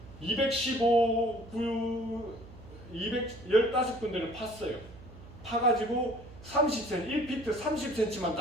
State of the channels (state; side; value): noise; right; hum, 18 dB below the sound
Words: 215군데를 팠어요. 파가지고 30cm, 1피트 30cm만